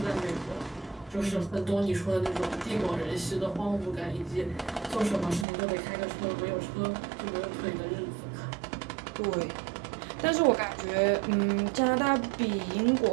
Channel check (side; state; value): left; drops out; at 5.5 s